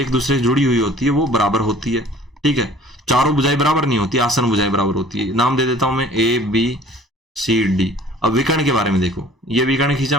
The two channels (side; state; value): both; normal; correlation 0.50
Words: दूसरे से जुड़ी हुई होती है वो बराबर होती है। ठीक है, चारों भुजाएं बराबर नहीं होती, आसन्न भुजाएं बराबर होती है। नाम दे देता हूं मैं ABCD। अब विकर्ण के बारे में देखो, ये विकर्ण खींचा